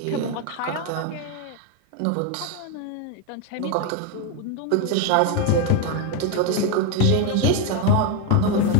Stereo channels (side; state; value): both; different; correlation 0.02